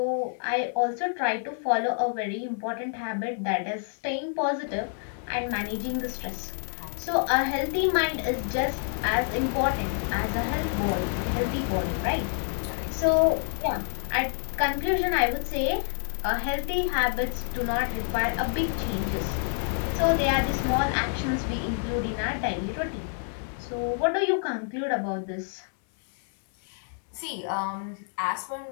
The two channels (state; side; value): silent; right; 59 dB below the other